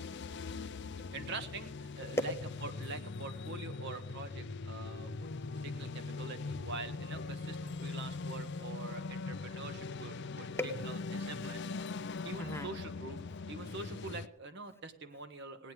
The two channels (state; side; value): normal; both; correlation 0.39